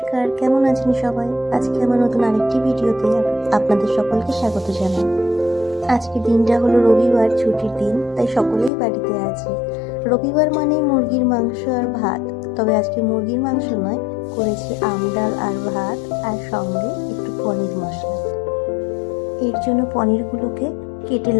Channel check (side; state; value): right; drops out; at 8.7 s